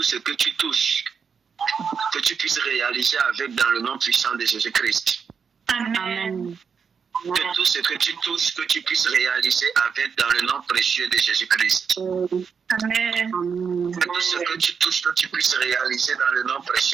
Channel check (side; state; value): left; quieter; 6.3 dB